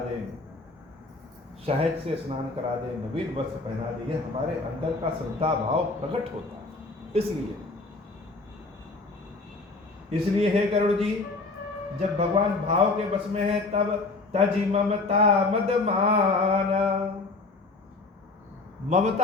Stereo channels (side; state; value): right; quieter; 3.5 dB